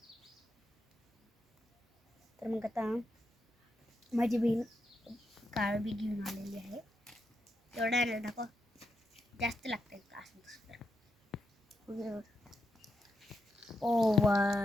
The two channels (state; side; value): normal; both; correlation 0.84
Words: तर मग आता माझी बहीण काळं बी घेऊन आलेली आहे. एवढं आहे दाखव, जास्त लागतं का असं दुसरं. ओ वा,